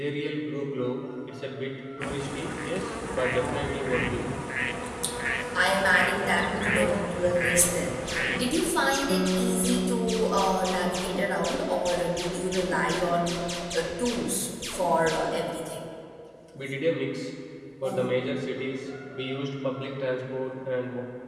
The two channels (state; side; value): identical; both; correlation 1.00